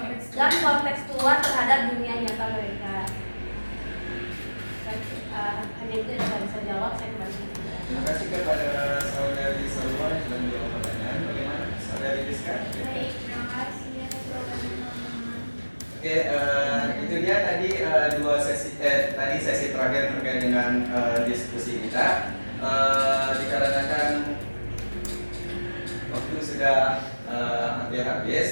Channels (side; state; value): both; inverted; correlation -1.00